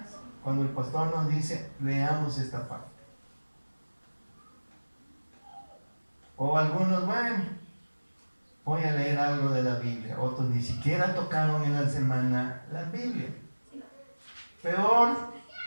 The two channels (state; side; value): inverted; both; correlation -1.00